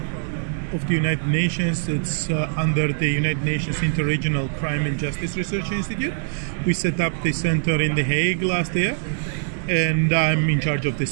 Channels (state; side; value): silent; left; digital silence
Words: of the United Nations. It's under the United Nations Interregional Crime and Justice Research Institute. We set up the center in The Hague last year, and I'm in charge of the